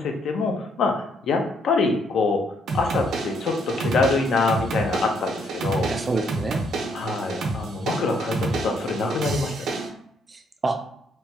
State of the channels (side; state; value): both; normal; correlation 0.70